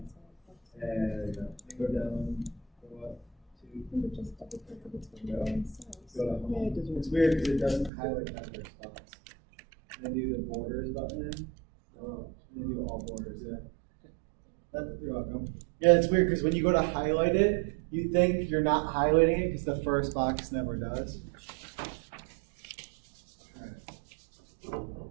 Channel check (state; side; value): drops out; left; at 7.9 s